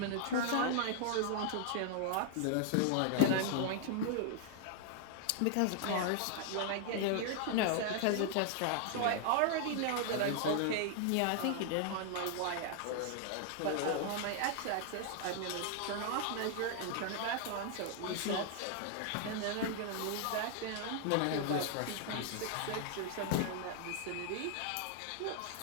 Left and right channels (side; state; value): both; different; correlation 0.00